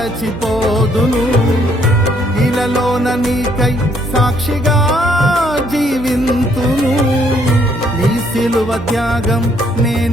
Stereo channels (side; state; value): right; noise; hum, 15 dB below the sound